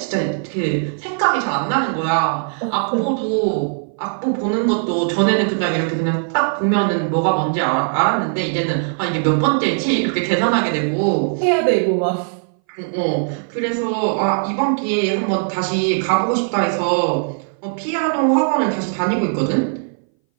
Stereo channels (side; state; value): left; silent; 61 dB below the other